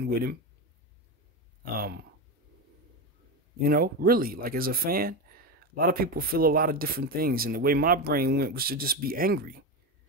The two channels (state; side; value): normal; both; correlation 0.17